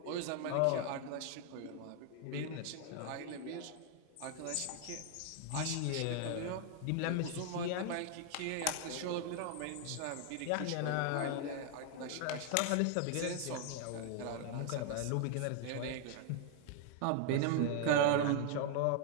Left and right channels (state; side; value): different; both; correlation 0.00